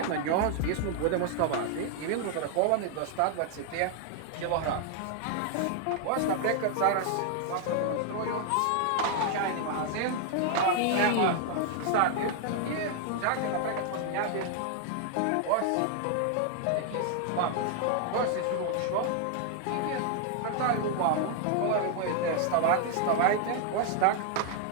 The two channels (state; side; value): different; both; correlation 0.00